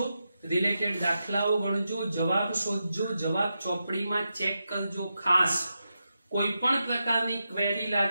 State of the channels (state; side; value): inverted; both; correlation -0.88